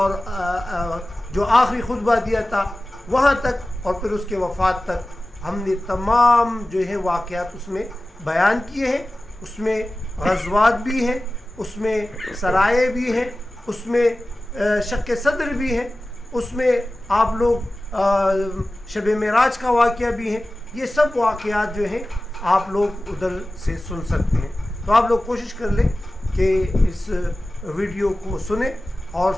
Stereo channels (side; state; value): both; normal; correlation 0.96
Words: جو آخری خطبہ دیا تھا وہاں تک، اور پھر اس کے وفات تک ہم نے تمام جو ہے واقعات اس میں بیان کیے ہیں. اس میں غزوات بھی ہیں، اس میں سرائے بھی ہیں، اس میں شق صدر بھی ہیں، اس میں آپ لوگ شب معراج کا واقعہ بھی ہے. یہ سب واقعات جو ہیں آپ لوگ ادھر سے سن سکتے ہیں. تو آپ لوگ کوشش کر لیں کہ اس ویڈیو کو سنیں، اور